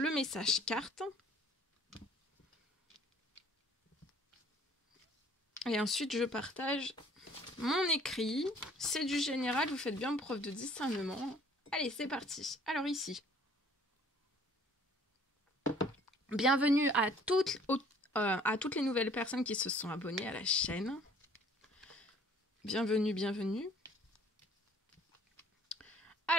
message carte. Et ensuite, je partage mon écrit. C'est du général, vous faites bien preuve de discernement. Allez, c'est parti. Alors ici, bienvenue à toutes les nouvelles personnes qui se sont abonnées à la chaîne. Bienvenue.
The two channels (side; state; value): both; normal; correlation 0.55